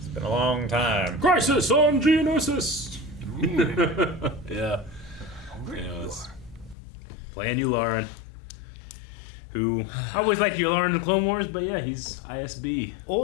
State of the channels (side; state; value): right; drops out; at 6.8 s